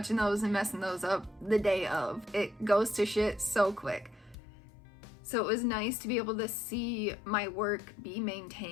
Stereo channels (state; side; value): drops out; right; at 4.4 s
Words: those and messing those up the day of. It goes to shit so quick. So it was nice to be able to see my work be